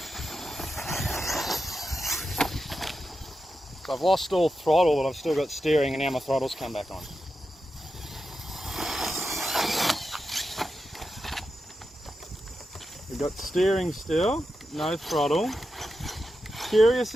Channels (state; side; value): normal; both; correlation 0.89